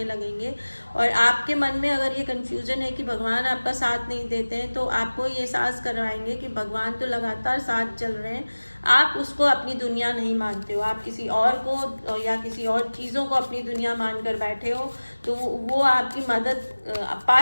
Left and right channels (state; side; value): inverted; both; correlation -1.00